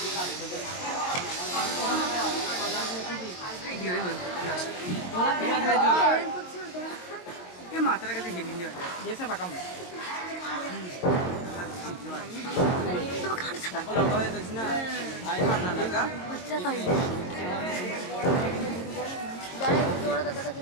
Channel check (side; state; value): right; late; 22 ms